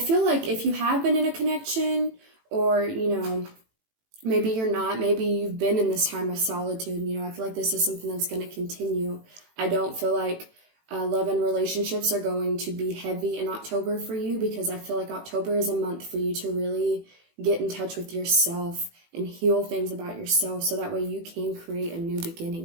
like if you have been in a connection or, maybe you're not, maybe you've been in this time of solitude, I feel like this is something that's going to continue. I don't feel like love and relationships are going to be heavy in October for you, because I feel like October is a month for you to really get in touch with yourself and heal things about yourself, so that way you can create a new beginning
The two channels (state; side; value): late; left; 18 ms